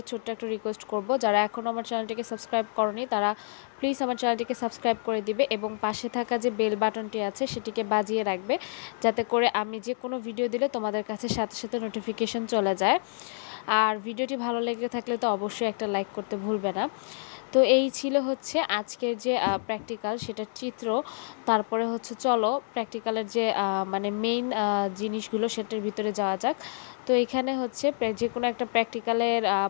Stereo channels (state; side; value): silent; right; 59 dB below the other